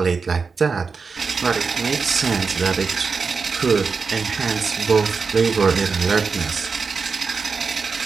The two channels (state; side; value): quieter; left; 4.9 dB